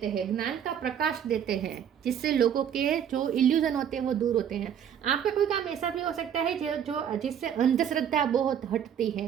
हैं, ज्ञान का प्रकाश देते हैं, जिससे लोगों के जो इल्यूजन होते हैं वो दूर होते हैं। आपका कोई काम ऐसा भी हो सकता है जो जिससे अंधश्रद्धा बहुत हटती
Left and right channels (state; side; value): quieter; left; 8.9 dB